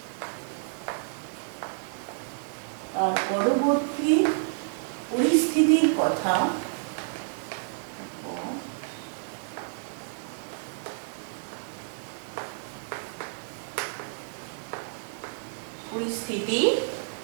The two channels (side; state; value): left; silent; digital silence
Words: আর পরবর্তী পরিস্থিতির কথা